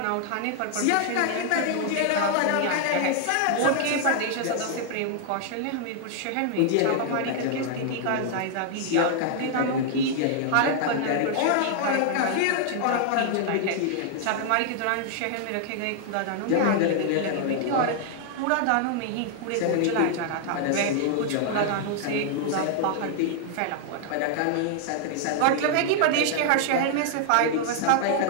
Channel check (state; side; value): different; both; correlation 0.00